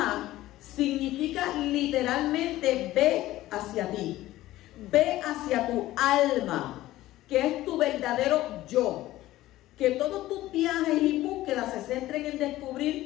significa literalmente ve hacia ti, ve hacia tu alma, que es tu verdadero yo. Que todos tus viajes y búsquedas se centren en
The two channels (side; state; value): right; quieter; 15.8 dB